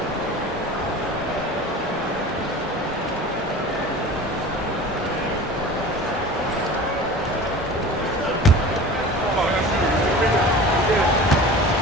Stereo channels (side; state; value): both; normal; correlation 0.38